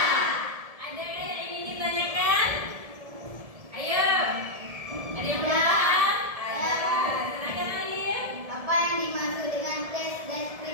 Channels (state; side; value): late; left; 1.7 ms